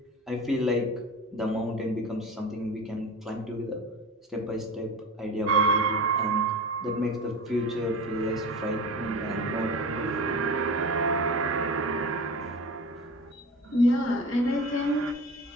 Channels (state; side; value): normal; both; correlation 0.32